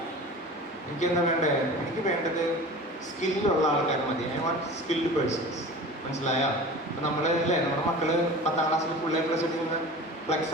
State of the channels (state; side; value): normal; both; correlation 0.37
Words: എനിക്ക് എന്താ വേണ്ടേ? എനിക്ക് വേണ്ടത് സ്കില്ലുള്ള ആൾക്കാർ മതി. I want skilled persons. മനസ്സിലായോ? അപ്പൊ നമ്മള് അല്ലേ, നമ്മുടെ മക്കള് 10ാം ക്ലാസ്സിൽ ഫുൾ A+ എടുക്കുന്ന ഫ്ലെക്സ്